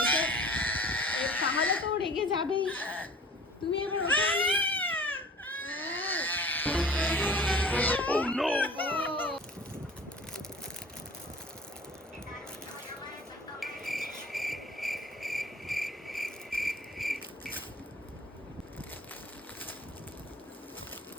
তাহলে তো রেগে যাবেই। তুমি এবার ওটা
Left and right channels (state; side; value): normal; both; correlation 0.47